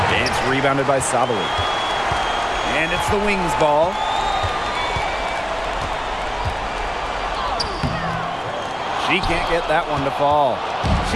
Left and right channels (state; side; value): identical; both; correlation 1.00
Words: It's rebounded by Sabally. And it's the Wings ball. She can't get that one to fall.